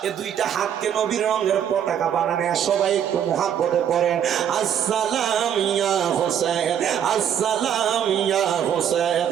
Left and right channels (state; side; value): quieter; left; 9.2 dB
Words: এ দুইটা হাতকে নবীর রঙের পতাকা বানানে সবাই একটু মুহাব্বতে পড়েন, আসসালাম ইয়া হুসাইন, আসসালাম ইয়া হুসাইন,